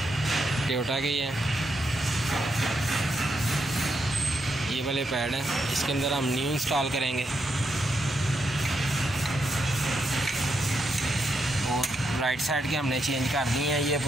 टोयोटा के ही है, ये वाले पैड हैं, इसके अंदर हम न्यू इंस्टॉल करेंगे। और राइट साइड के हमने चेंज कर दिए हैं, ये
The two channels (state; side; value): normal; both; correlation 0.82